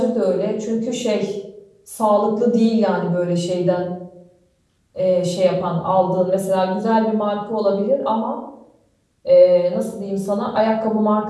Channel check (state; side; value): identical; both; correlation 1.00